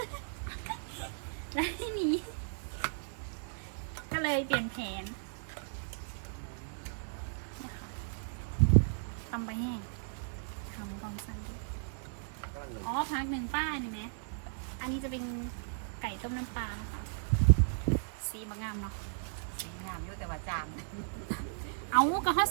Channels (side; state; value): left; silent; digital silence